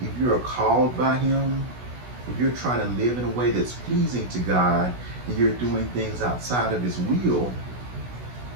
if you're called by him, if you're trying to live in a way that's pleasing to God, and you're doing things outside of his will,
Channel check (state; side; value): late; left; 16 ms